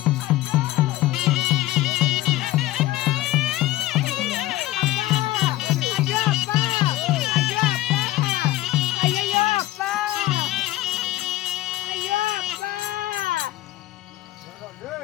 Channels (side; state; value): right; quieter; 16.1 dB